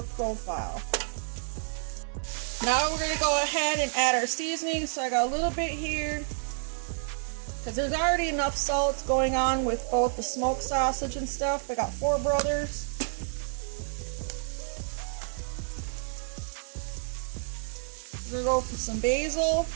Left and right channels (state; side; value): silent; left; digital silence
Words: profile. Now we're gonna go ahead and add our seasoning. So I got a little bit here, because there's already enough salt going on with both the smoked sausage and stuff. I got 4 brothers. We're gonna go for some basil.